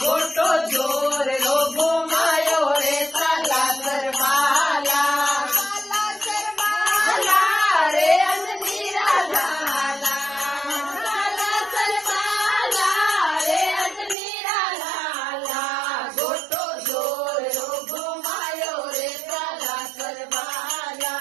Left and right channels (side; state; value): left; drops out; at 14.2 s